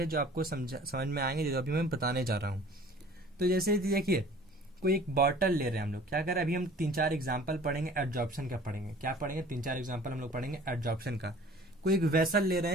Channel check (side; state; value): both; normal; correlation 0.48